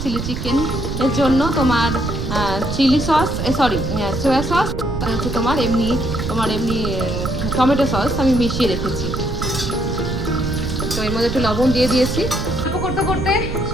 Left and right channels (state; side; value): noise; right; rumble, 4 dB below the sound